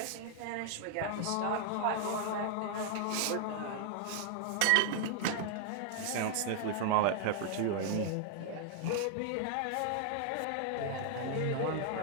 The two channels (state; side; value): different; both; correlation -0.01